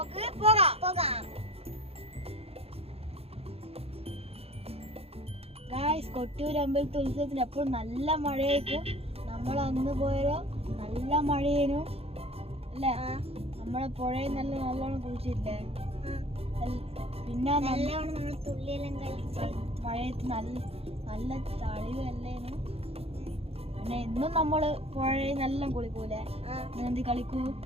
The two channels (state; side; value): late; left; 0.29 ms